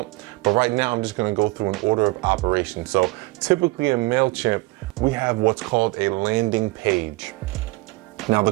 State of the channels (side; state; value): left; quieter; 22.8 dB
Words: But right now, I'm just going to go through an order of operation. So typically in Mailchimp, we have what's called a landing page. Now,